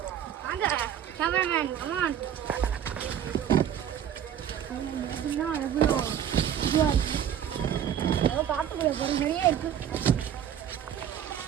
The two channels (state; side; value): quieter; left; 9.6 dB